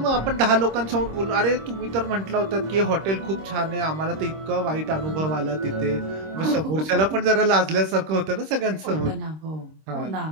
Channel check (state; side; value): late; left; 26 ms